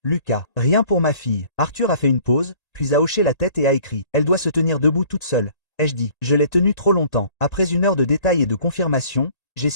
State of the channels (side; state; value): right; late; 1.8 ms